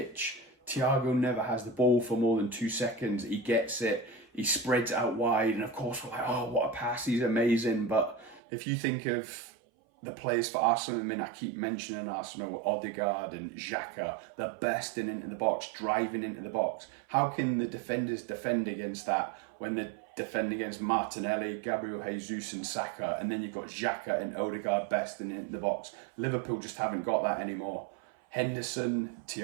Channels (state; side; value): drops out; left; at 8.4 s